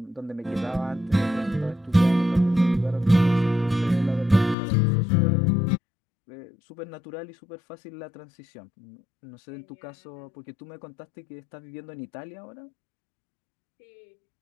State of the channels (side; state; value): right; drops out; at 4.5 s